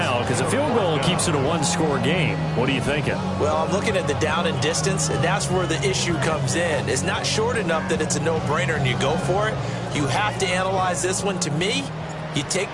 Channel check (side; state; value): both; identical; correlation 1.00